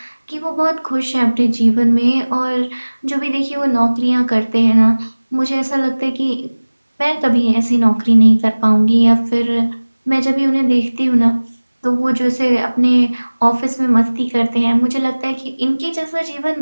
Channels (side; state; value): both; inverted; correlation -1.00